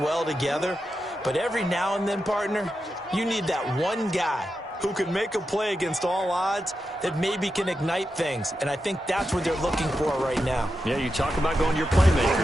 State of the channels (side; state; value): both; normal; correlation 0.88